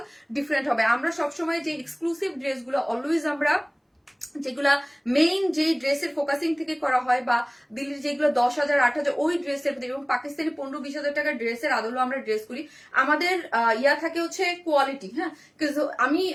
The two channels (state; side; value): identical; both; correlation 1.00